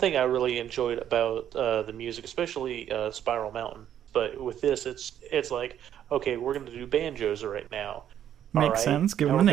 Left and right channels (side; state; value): left; quieter; 10.3 dB